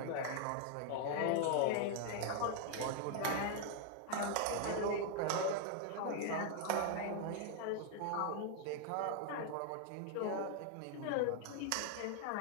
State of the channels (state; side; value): different; both; correlation 0.00